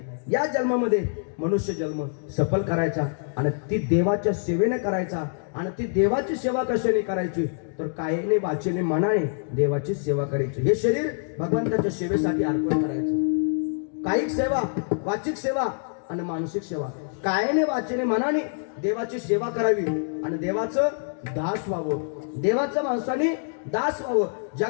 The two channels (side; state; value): right; silent; digital silence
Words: या जन्मामध्ये मनुष्य जन्म सफल करायचा आणि ती देवाच्या सेवेने करायचा. आणि ती देवाची सेवा कशाने करायची तर कायेने वाचेने मनाने देवाची सेवा करायची. हे शरीर भगवंताच्या सेवेसाठी अर्पण करायचं. कायिक सेवा, वाचिक सेवा आणि मानसिक सेवा. कायेने वाचेने मनाने देवाची सेवा करावी आणि देवाचं दास व्हावं. देवाचं माणसाने दास व्हावं.